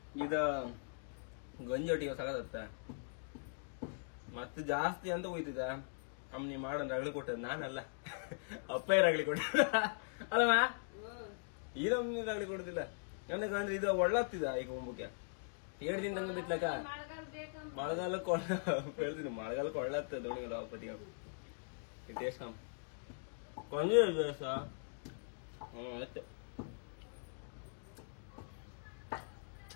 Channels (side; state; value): right; silent; digital silence